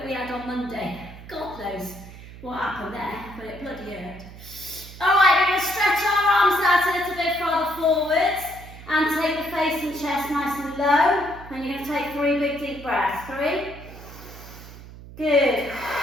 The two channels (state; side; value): noise; right; hum, 16 dB below the sound